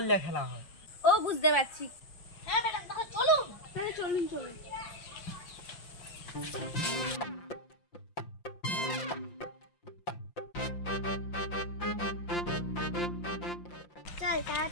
দিয়ে খেলা হয়। ও বুঝতে পারছি। হ্যাঁ ম্যাডাম, তাহলে চলুন। তাহলে চলুন। চল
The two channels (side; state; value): right; late; 5.8 ms